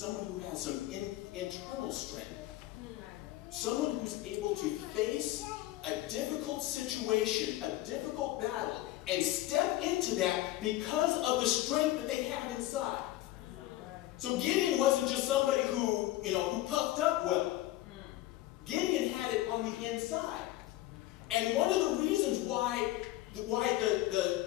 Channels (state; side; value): quieter; right; 16.0 dB